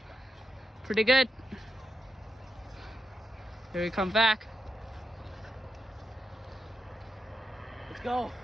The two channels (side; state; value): both; normal; correlation 0.86